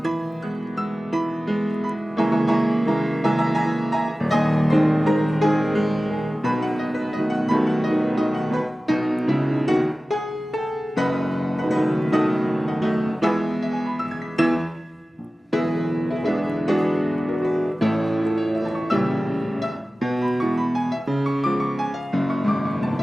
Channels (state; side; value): normal; both; correlation 0.96